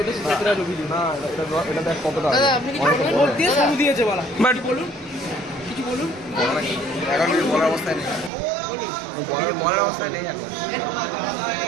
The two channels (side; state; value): left; drops out; at 8.3 s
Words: দাদা আপনি কি বাট বলুন, কিছু বলুন। এখন কিছু বলার অবস্থায় নেই, বলার অবস্থায় নেই এখন।